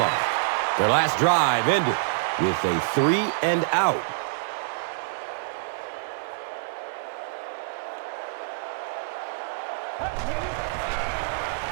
Their last drive ended with a 3 and out.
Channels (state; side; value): quieter; left; 36.8 dB